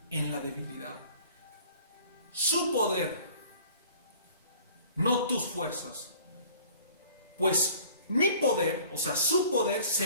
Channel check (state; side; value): inverted; both; correlation -0.50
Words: en la debilidad. Su poder, no tus fuerzas. Pues mi poder, o sea, su poder se